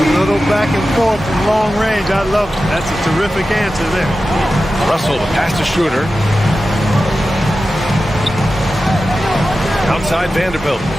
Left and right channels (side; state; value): both; normal; correlation 0.93